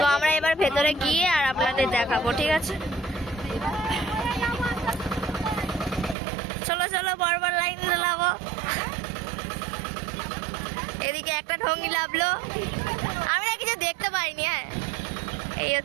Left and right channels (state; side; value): drops out; left; at 6.2 s